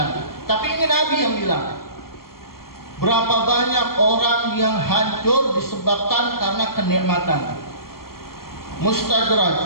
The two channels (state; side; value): late; right; 0.93 ms